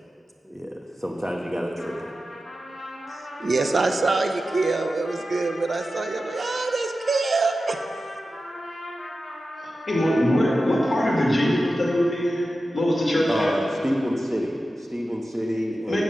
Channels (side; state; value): both; normal; correlation 0.93